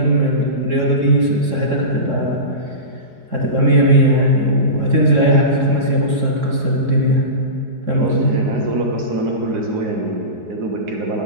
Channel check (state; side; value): late; left; 4.7 ms